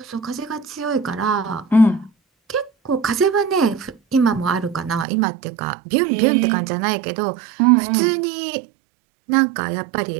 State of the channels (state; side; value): drops out; left; at 5.1 s